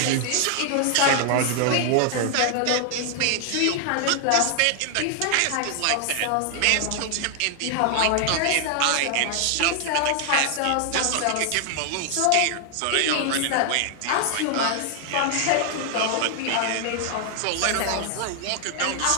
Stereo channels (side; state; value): both; different; correlation 0.00